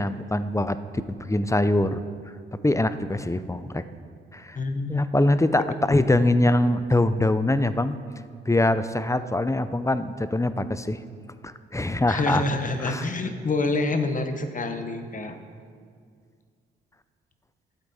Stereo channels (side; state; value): both; normal; correlation 0.83